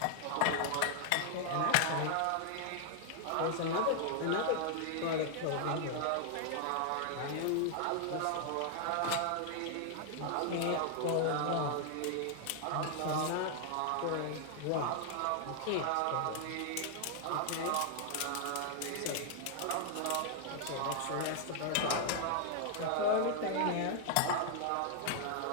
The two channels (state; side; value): different; both; correlation 0.00